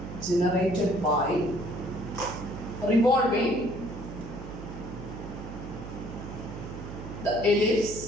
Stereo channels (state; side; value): noise; right; hum, 10 dB below the sound